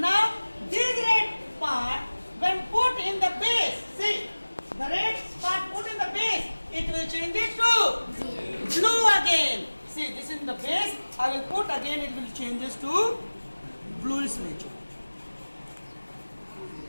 this red part, when put in the base, see, the red part put in the base, it will change it to blue again. See, this is in the base. I will put again, it will changes to bluish nature.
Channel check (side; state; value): both; inverted; correlation -1.00